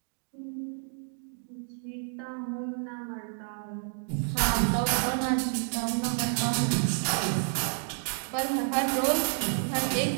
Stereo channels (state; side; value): silent; left; 58 dB below the other